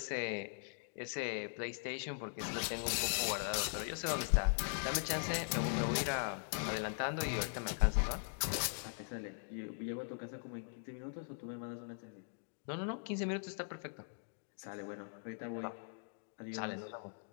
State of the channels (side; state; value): right; silent; digital silence